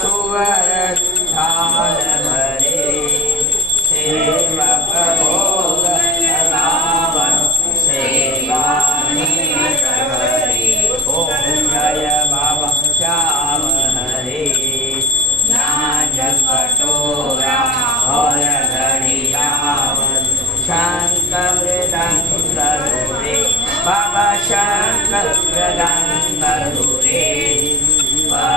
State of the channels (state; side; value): normal; both; correlation 0.38